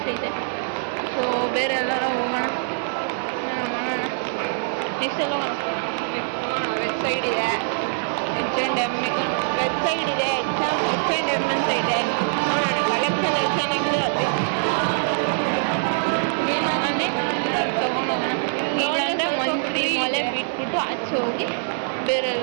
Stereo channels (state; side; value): silent; left; 59 dB below the other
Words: ಐತೆ. ಸೊ ಬೇರೆ ಎಲ್ಲಾರ ಹೋಗೋಣ, ಮಾಡೋಣ. ನೆಕ್ಸ್ಟ್ ಎಲ್ಲ ವೆಬ್ ಸೈಡ್ ಇದೆ, H&M ವೆಬ್ ಸೈಡ್ ಇದೆ, H&M ಅಂತ ಇದೆ. ನೋಡೋಣ ಕಲೆಕ್ಷನ್ ಚೆನ್ನಾಗಿದೆ. ಏನಾಗಲಿ ತೊಗೊಂಡೋಗೋಣ. ಇಲ್ಲಾಂದರೆ ಮಂತ್ರಿ ಮಾಲೆ ಬಿಟ್ಬಿಟ್ಟು ಆಚೆ ಹೋಗಿ ಬೇರೆ